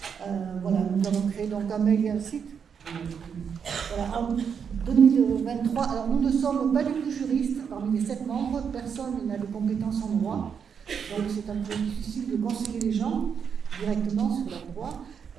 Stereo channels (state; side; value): quieter; left; 7.0 dB